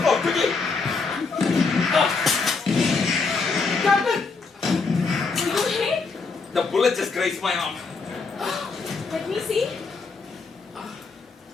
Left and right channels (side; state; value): right; quieter; 4.4 dB